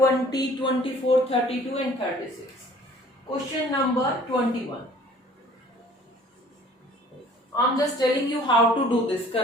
24, 32 and 36. Question number 21. I'm just telling you how to do this.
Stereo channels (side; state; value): both; normal; correlation 0.52